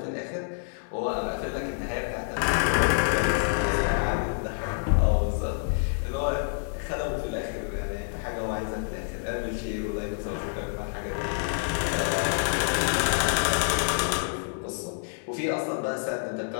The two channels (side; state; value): right; silent; digital silence